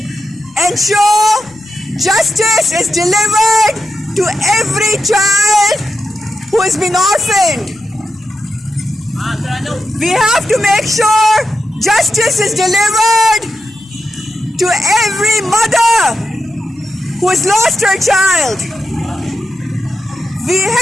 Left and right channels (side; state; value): both; normal; correlation 0.87